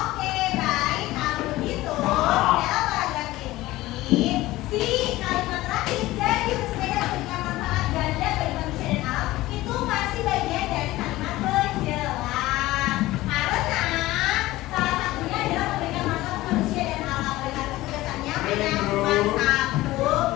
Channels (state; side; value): quieter; right; 17.6 dB